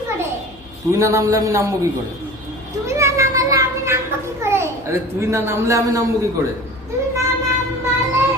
করে? তুই না নামলে আমি নামবো কি করে? তুমি না নামালে আমি নামবো কি করে? আরে তুই না নামলে আমি নামবো কি করে? তুমি না নামালে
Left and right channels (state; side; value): noise; left; hum, 24 dB below the sound